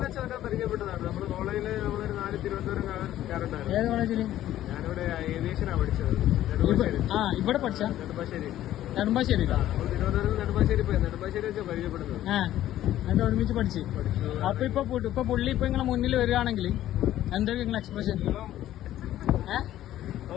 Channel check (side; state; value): right; quieter; 13.1 dB